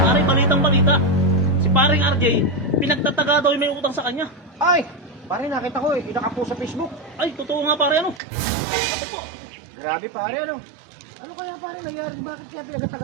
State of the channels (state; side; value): drops out; left; at 8.2 s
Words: balitang balita. Si paring RJ, pinagtataga daw yung may utang sa kanya. Ay! Pare, nakita ko eh. Nakapost sa Facebook. Ay, totoo nga pare ano. Ako po. Grabe pare, ano? Ano kaya pare nangyari? Bakit kaya